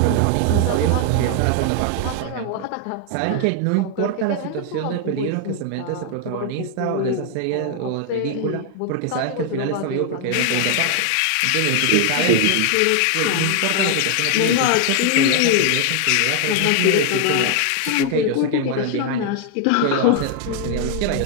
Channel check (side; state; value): both; different; correlation 0.00